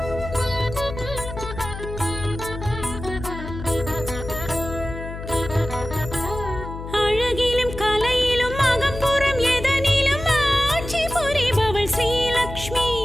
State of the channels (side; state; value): left; noise; hum, 9 dB below the sound